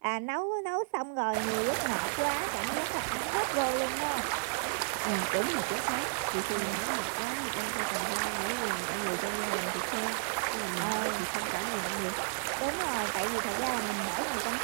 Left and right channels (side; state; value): left; silent; digital silence